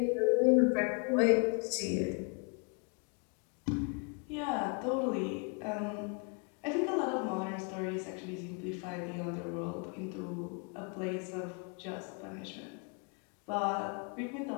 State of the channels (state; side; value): quieter; right; 35.1 dB